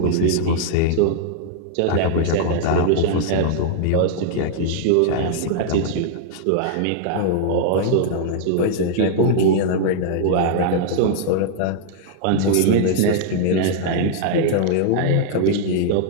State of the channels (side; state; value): both; different; correlation -0.01